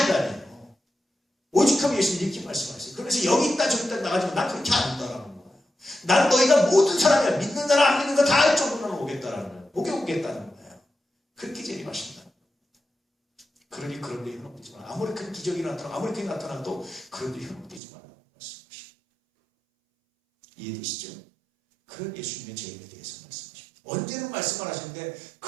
인간이에요. 오직하면 예수님 이렇게 말씀하세요. 그래서 여기 있다 저기 있다 나가지고 난 그렇게 안 한다라는 거예요. 난 너희가 모든 사람이야. 믿는 사람 안 믿는 거 다 할 정도로 오겠다라는 거예요. 오겠다는 거예요. 그렇게 재림하신다. 그러니 그런 데 현혹되지 마라. 아무리 큰 기적이 나타나고 아무리 크게 나타나도 그런 데 현혹되지 말라고 말씀하십니다. 이해되시죠? 그런 예수님의 재림에 대해서 말씀하십니다. 언제는 말씀을 하시는데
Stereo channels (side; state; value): left; drops out; at 17.8 s